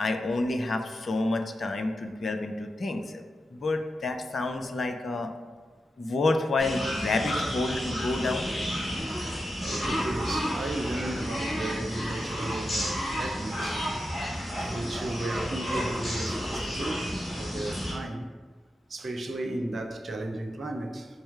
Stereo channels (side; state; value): both; normal; correlation 0.88